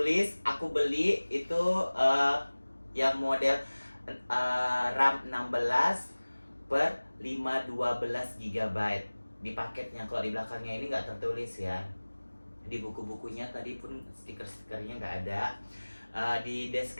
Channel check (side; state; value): both; inverted; correlation -1.00